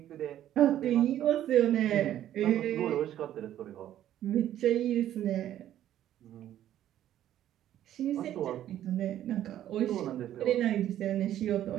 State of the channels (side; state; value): left; quieter; 11.9 dB